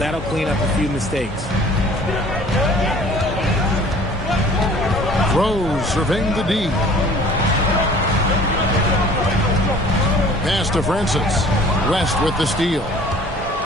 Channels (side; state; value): both; normal; correlation 0.50